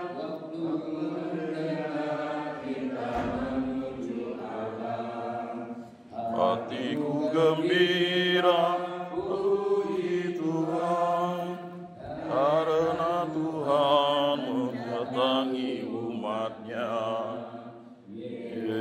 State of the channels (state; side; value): identical; both; correlation 1.00